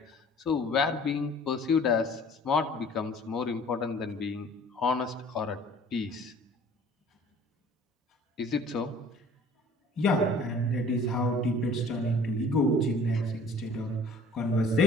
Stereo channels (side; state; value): both; normal; correlation 0.50